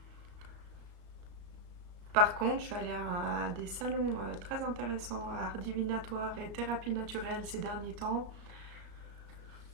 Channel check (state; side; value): late; left; 34 ms